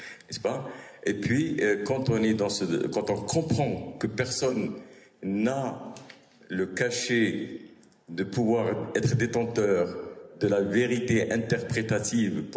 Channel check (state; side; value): identical; both; correlation 1.00